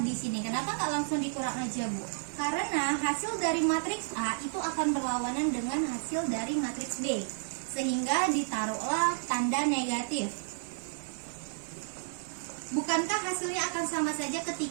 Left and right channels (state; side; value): silent; left; 57 dB below the other